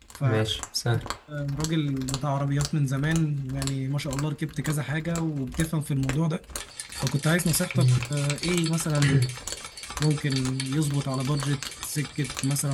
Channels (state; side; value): identical; both; correlation 1.00